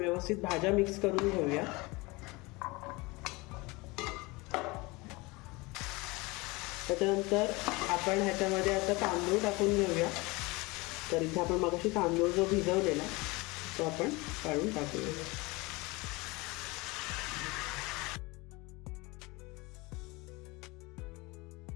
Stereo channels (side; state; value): right; quieter; 24.2 dB